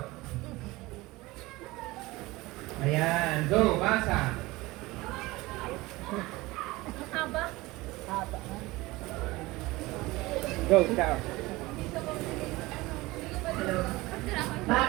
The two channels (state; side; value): quieter; left; 20.6 dB